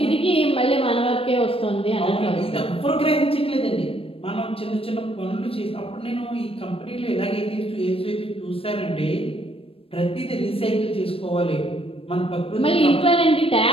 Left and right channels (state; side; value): late; right; 0.27 ms